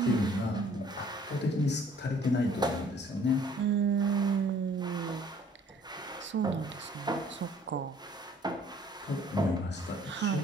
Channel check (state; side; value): normal; both; correlation 0.57